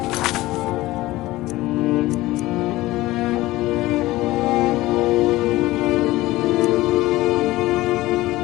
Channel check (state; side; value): quieter; right; 17.9 dB